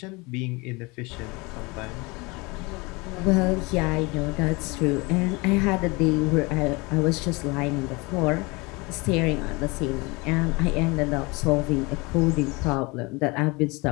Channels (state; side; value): quieter; right; 25.8 dB